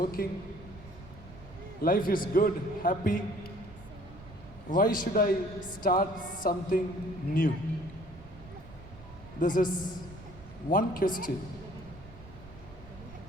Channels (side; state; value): right; noise; rumble, 17 dB below the sound